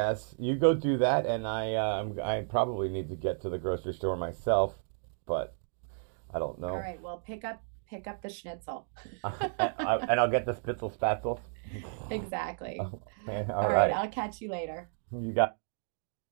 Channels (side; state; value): left; silent; digital silence